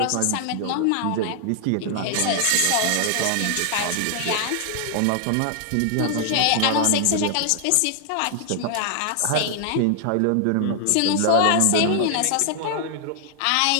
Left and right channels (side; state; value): both; different; correlation 0.00